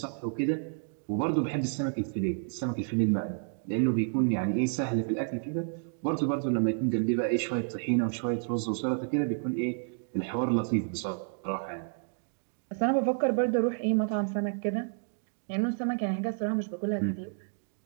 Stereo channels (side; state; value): left; silent; 58 dB below the other